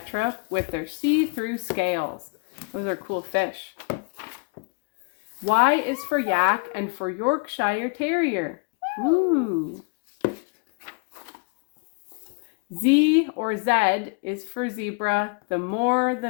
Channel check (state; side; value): quieter; right; 33.9 dB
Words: with their see-through scales. Those are cool fish. Y is for yak and for Yorkshire Terrier. Ooh. Z or Z is for zebra. The more, the